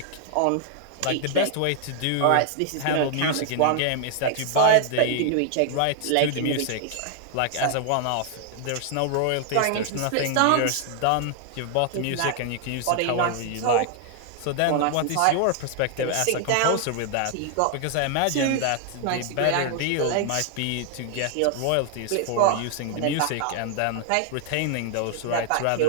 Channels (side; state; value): both; different; correlation 0.00